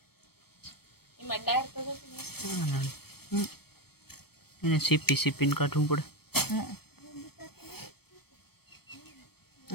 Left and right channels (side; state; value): right; late; 0.96 ms